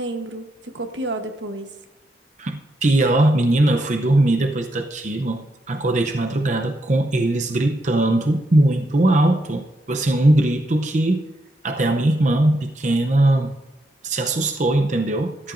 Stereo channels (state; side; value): normal; both; correlation 0.80